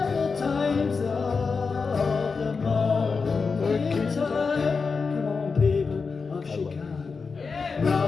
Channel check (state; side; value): quieter; right; 4.8 dB